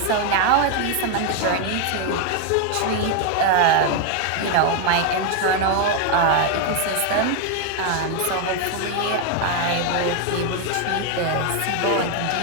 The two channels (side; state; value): both; different; correlation 0.01